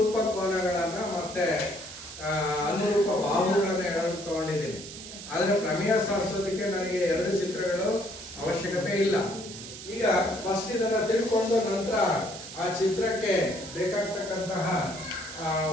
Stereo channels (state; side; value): noise; right; hiss, 12 dB below the sound